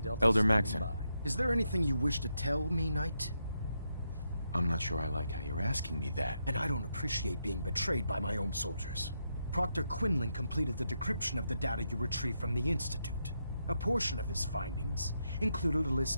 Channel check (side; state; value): both; inverted; correlation -0.82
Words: Elder standing Maxson. by. Is there anything you wish to tell me, Knight? I'm not sure I like how you're asking me that. And I don't appreciate being betrayed by my own soldiers. Proctor Quinlan completed the decryption of the data you retrieved from the Institute. A portion of his findings included a